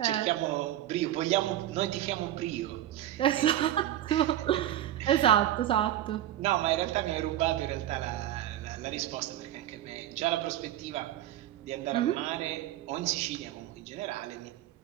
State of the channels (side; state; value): left; quieter; 12.7 dB